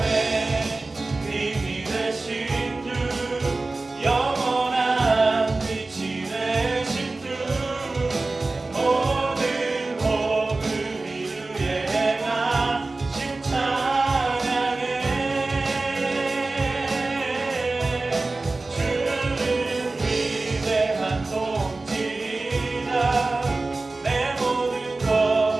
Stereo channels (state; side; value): quieter; left; 3.3 dB